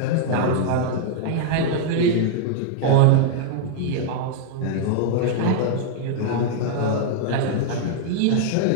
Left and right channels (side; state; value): both; different; correlation -0.01